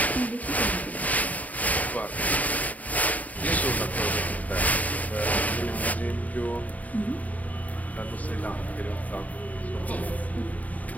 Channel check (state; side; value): late; right; 0.073 ms